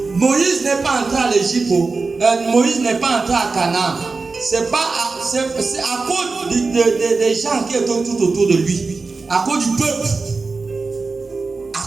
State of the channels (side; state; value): left; quieter; 4.1 dB